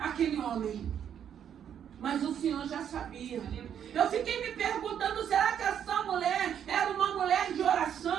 homem. Mas o Senhor já sabia. Eu fiquei me perguntando, será que essa mulher era uma mulher de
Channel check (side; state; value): left; quieter; 9.0 dB